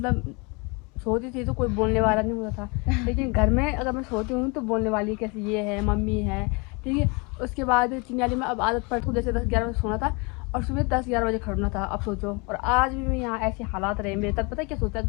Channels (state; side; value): quieter; right; 29.9 dB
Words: सोती थी तो कोई बोलने वाला नहीं होता था, लेकिन घर में अगर मैं सोती हूँ तो बोलने वाली कैसे ये है, मम्मी है। ठीक है, उसके बाद चिन्याली में अब आदत पड़, जैसे 10-11 बजे सोना था और सुबह 10-11 बजे खड़ना था। अब सोचो, और आज भी मैं यहाँ ऐसे हालात रहे मेरे, तब पता है क्या सोचता